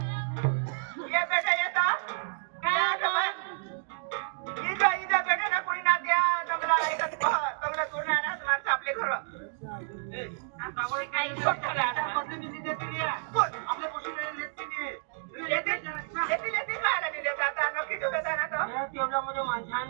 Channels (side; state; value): left; silent; digital silence